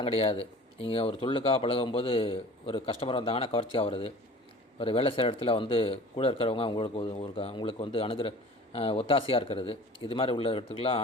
கிடையாது. நீங்கள் ஒரு தொழிலுக்காக பழகும்போது ஒரு கஸ்டமர் வந்தாங்கன்னா கவர்ச்சியாக வருது. ஒரு வேலை செய்கிற இடத்துல கூட இருக்கிறவங்க உங்களுக்கு அணுகிற ஒத்தாசையாக இருக்கிறது. இது மாதிரி உள்ள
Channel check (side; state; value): both; normal; correlation 0.43